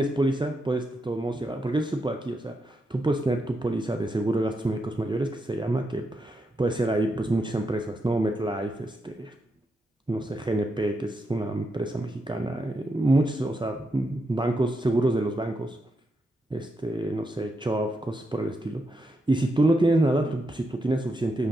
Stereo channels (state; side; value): normal; both; correlation 0.83